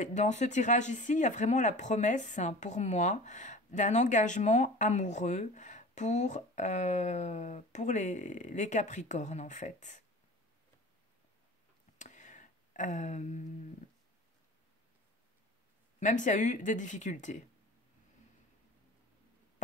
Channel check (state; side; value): normal; both; correlation 0.39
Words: dans ce tirage ici, il y a vraiment la promesse, hein, pour moi, d'un engagement amoureux pour les Capricornes, en fait. Euh, Même s'il y a eu des difficultés